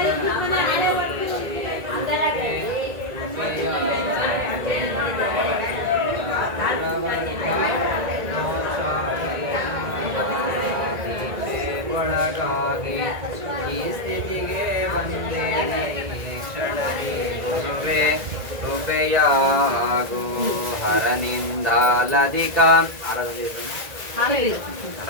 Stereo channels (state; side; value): late; left; 1.9 ms